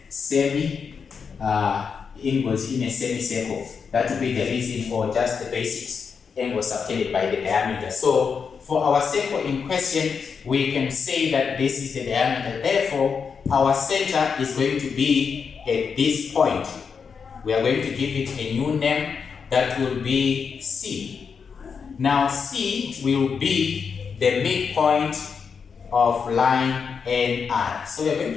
semicircle. That would be the reason for just the basics, angle subtended by the diameter. So for our circle in question, we can say that this is the diameter. Therefore, our center is going to be at this point. We are going to give it a new name that will be C. Now, C will be the midpoint of line NR. So we are going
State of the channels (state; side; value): quieter; right; 6.0 dB